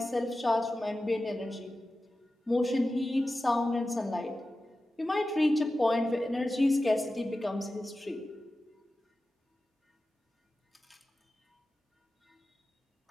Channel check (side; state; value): both; normal; correlation 0.94